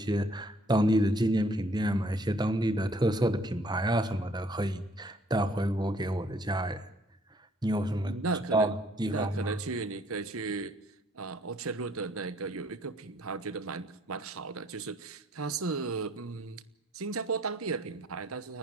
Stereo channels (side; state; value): both; normal; correlation 0.62